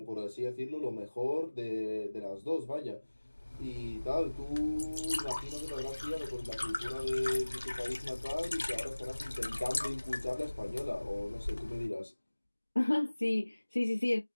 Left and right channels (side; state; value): both; inverted; correlation -1.00